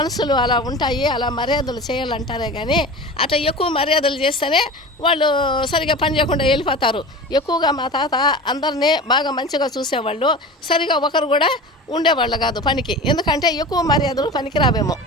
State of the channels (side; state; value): both; normal; correlation 0.34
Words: అలా ఉంటాయి. అలా మర్యాదలు చేయాలంటారే కానీ అట్లా ఎక్కువ మర్యాదలు చేస్తేనే వాళ్ళు సరిగా పని చేయకుండా వెళ్ళిపోతారు. ఎక్కువగా మా తాత అందరినీ బాగా మంచిగా చూసేవాళ్ళు. సరిగా ఒకరు కూడా ఉండేవాళ్ళు కాదు పనికి. ఎందుకంటే ఎక్కువ మర్యాదలు పనికి రావేమో.